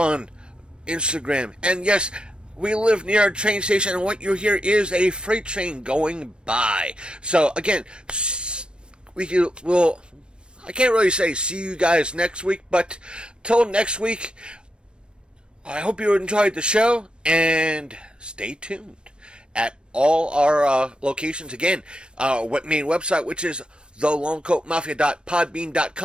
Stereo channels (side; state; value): left; late; 0.055 ms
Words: Instagram. And yes, we live near a train station, and what you hear is a freight train going by. So again, I can't really say see you guys next week, but till next week, I hope you enjoyed the show, and stay tuned at all our locations. Again, our main website, which is